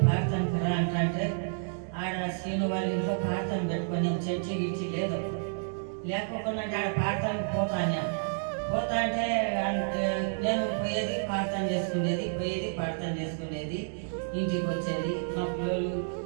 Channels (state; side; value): silent; left; digital silence